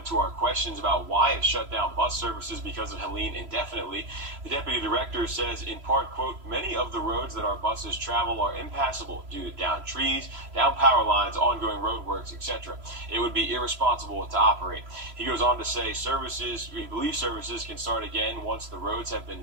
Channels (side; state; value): left; late; 3.0 ms